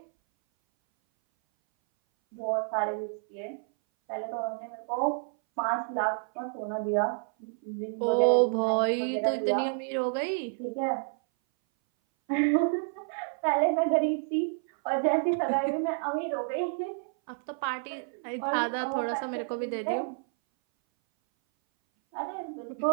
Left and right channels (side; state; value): left; silent; 58 dB below the other